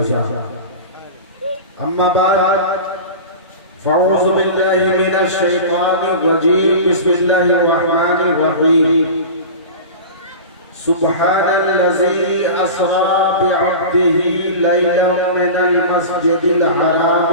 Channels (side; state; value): both; inverted; correlation -0.32